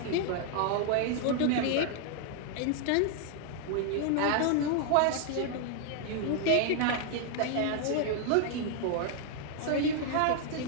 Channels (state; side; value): different; both; correlation 0.00